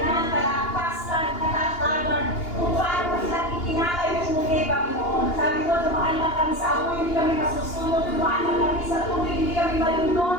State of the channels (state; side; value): late; right; 2.8 ms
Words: kalakasan, katatagan, kung paano po silang itinakay yung muli, Panginoon. Sabi ko, dumaan lang kami sa apoy, hindi kami masusunod, dumaan lang kami sa tubig, hindi kami